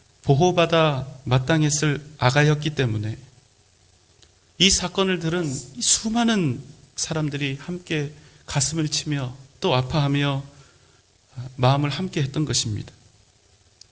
보호받아 마땅했을 아가였기 때문에 이 사건을 들은 수많은 사람들이 함께 가슴을 치며 또 아파하며 마음을 함께 했던 것입니다.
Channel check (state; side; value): identical; both; correlation 1.00